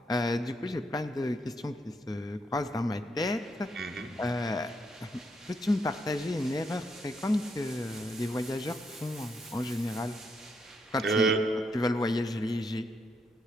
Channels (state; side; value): normal; both; correlation 0.78